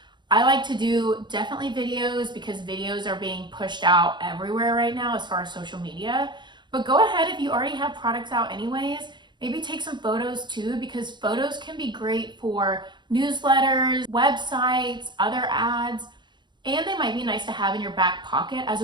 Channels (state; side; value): late; left; 0.22 ms